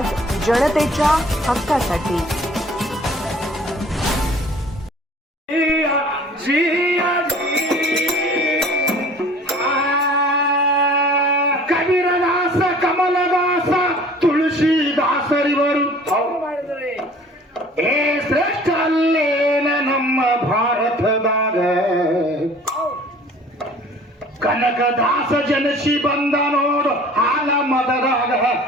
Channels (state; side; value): normal; both; correlation 0.49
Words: जनतेच्या हक्कासाठी. ಕಬೀರದಾಸ ಕಮಲದಾಸ ತುಳಸಿದಾಸರಿವರು ಏ ಶ್ರೇಷ್ಠ ಅಲ್ಲೇನ ನಮ್ಮ ಭಾರತದಾಗ ಕನಕದಾಸ ಜನಸಿ ಬಂದ ನೋಡು ಹಾಲ ಮದರಾಗ